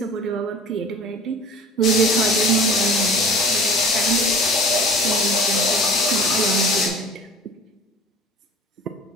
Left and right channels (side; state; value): both; normal; correlation 0.43